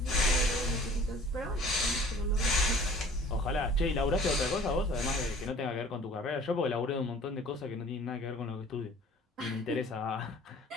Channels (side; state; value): both; normal; correlation 0.48